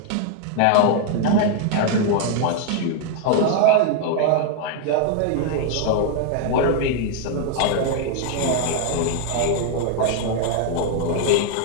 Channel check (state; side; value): different; both; correlation 0.00